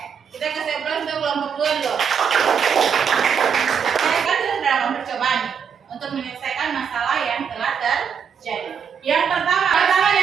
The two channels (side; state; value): left; quieter; 7.0 dB